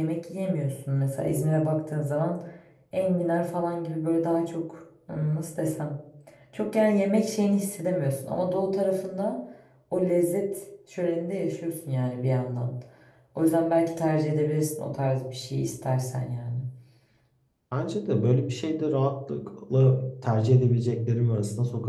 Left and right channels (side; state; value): both; identical; correlation 1.00